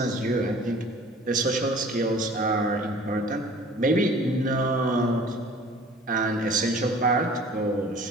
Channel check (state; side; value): normal; both; correlation 0.48